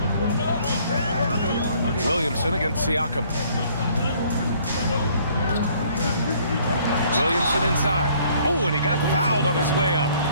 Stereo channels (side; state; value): both; inverted; correlation -0.60